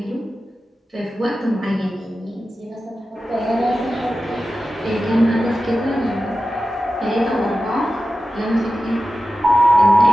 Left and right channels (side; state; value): both; normal; correlation 0.93